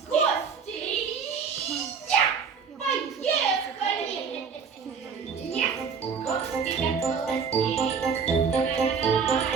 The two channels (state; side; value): quieter; left; 6.0 dB